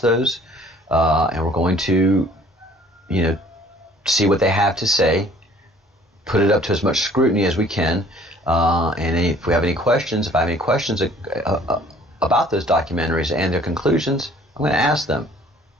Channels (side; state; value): both; normal; correlation 0.54